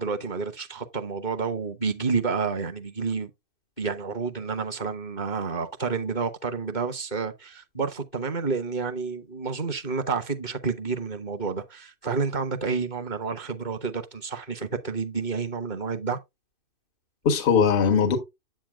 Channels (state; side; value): late; right; 2.6 ms